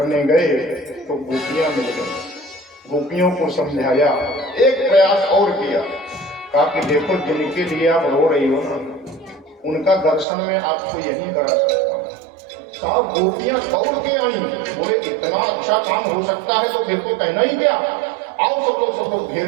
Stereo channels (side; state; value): left; drops out; at 10.2 s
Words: गए तो गोपियां मिल गई। गोपियों को समझाया, एक प्रयास और किया, कहा कि देखो जिनके लिए आप रो रही हो ना, उनका दर्शन में आपको यही करा सकता हूँ। साहब गोपियां दौड़ के आई, बोले इतना अच्छा काम हो सकता है तो फिर तो कहना ही क्या। आओ सब लोग घेर